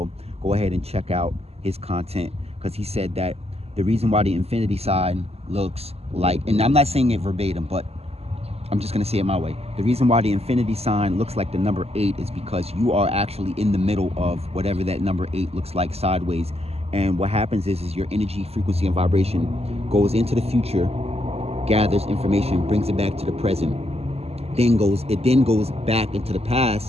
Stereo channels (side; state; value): left; late; 0.29 ms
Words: Go ahead and check out his content, because he said that the reason why the infinity sign looks like, and I'm not saying it verbatim, but I'm just going to say it my way. The reason why the infinity sign looks like the number 8 is because you are actually in the middle of whatever that number 8 looks like sideways. And what happens is your energy, frequency, and vibration goes into the future, gathers information, brings it back to the present, it then goes back into the